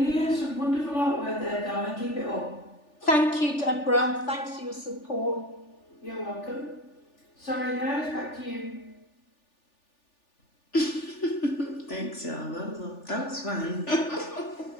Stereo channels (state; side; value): late; right; 3.4 ms